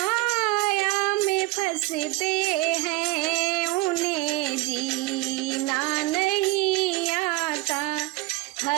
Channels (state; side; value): quieter; left; 20.4 dB